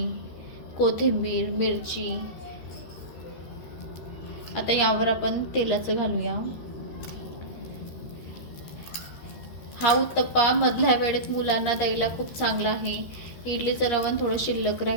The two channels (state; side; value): late; right; 13 ms